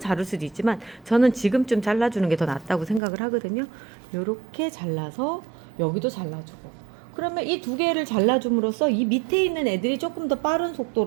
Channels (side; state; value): left; drops out; at 3.0 s